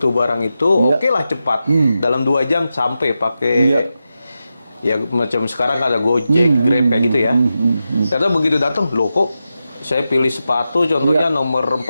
barang itu, oke lah cepat. Dalam 2 jam sampai pakai, ya macam sekarang ada Gojek, Grab kayak gitu ya. Ternyata begitu datang, loh kok saya pilih sepatu contohnya nomor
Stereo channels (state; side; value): inverted; both; correlation -0.90